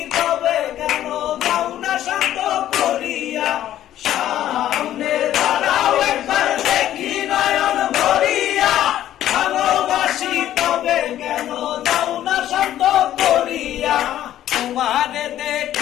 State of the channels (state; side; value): quieter; right; 12.3 dB